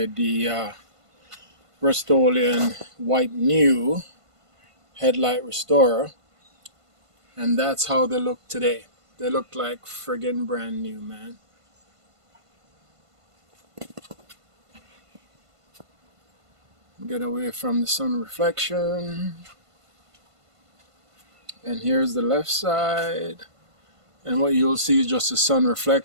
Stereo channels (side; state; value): left; late; 1.5 ms